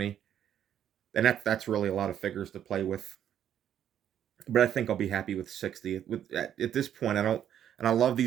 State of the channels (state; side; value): quieter; left; 10.0 dB